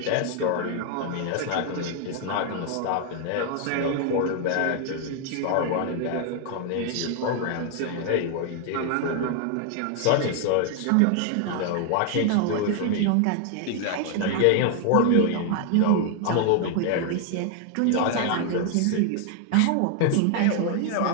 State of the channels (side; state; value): both; different; correlation 0.00